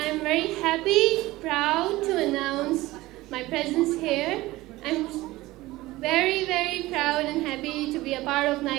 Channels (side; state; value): left; quieter; 18.5 dB